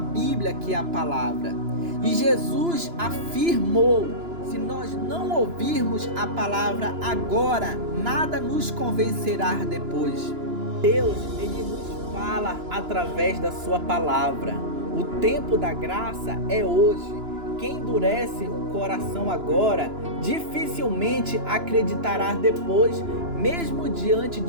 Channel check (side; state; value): left; late; 2.9 ms